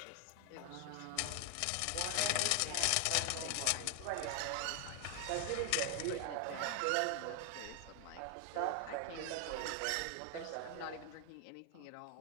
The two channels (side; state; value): both; different; correlation 0.00